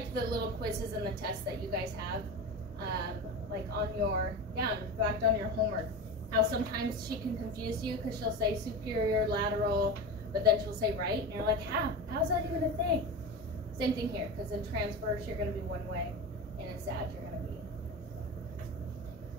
the little quizzes and the tests that you guys have, like on your, in fact, on your homework. How sometimes she can confuse you because she'll say superior, lateral, but then she'll say right, and you're like, how's that even a thing? Same thing here, because in transverse you're going to be one way, and in sag you're going to be.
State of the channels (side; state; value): both; normal; correlation 0.25